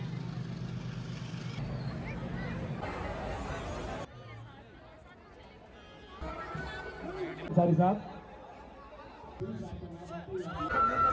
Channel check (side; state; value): both; identical; correlation 1.00